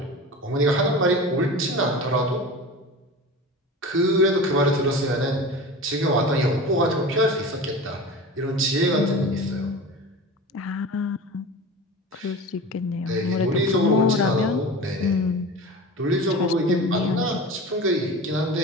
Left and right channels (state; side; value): normal; both; correlation 0.33